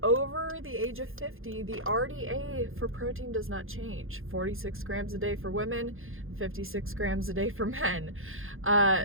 over the age of 50, the RDA for protein does not change. 46 grams a day for women, 56 grams a day for men.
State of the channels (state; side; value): late; left; 0.60 ms